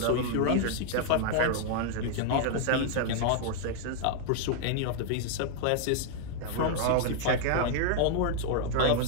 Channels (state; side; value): different; both; correlation -0.01